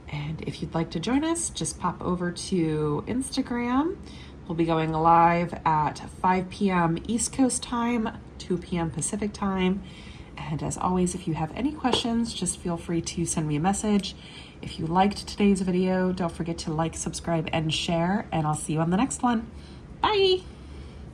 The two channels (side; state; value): both; identical; correlation 1.00